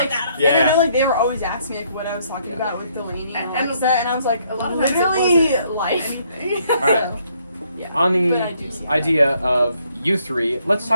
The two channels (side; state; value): both; inverted; correlation -0.69